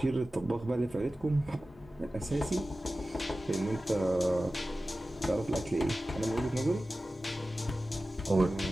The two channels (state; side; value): normal; both; correlation 0.95